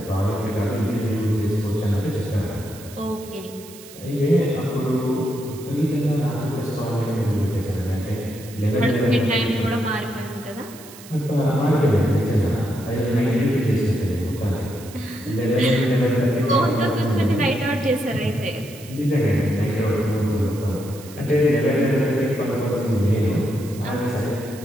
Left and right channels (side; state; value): right; noise; hiss, 18 dB below the sound